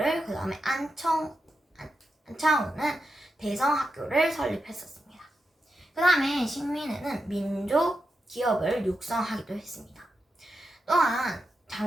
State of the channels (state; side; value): normal; both; correlation 0.87